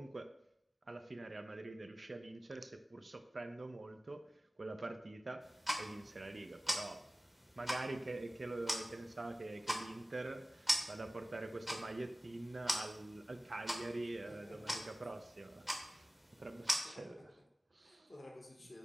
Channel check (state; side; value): normal; both; correlation 0.97